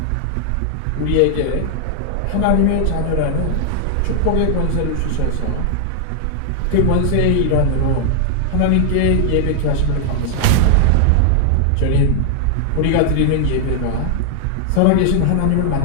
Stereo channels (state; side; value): different; both; correlation 0.00